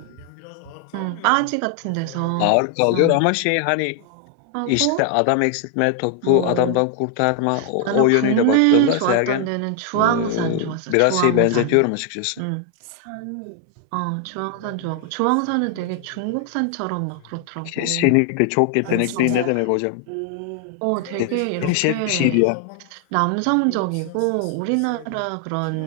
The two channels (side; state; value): both; different; correlation 0.00